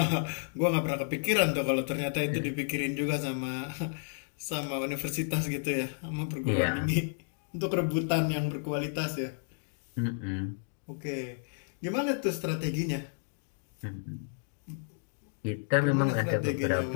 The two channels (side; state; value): right; silent; digital silence